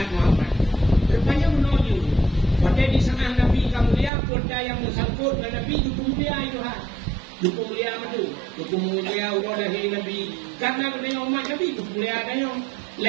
Muhammad. Rupanya menuju. Pada di sana Nabi kemuliaan pada yang bersangkut dengan Nabi itu pemuliaan itu Duku mulia madu, duku mulia udah dari Nabi. Karena kita umat Nabi itu mulia dia.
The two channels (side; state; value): left; drops out; at 4.1 s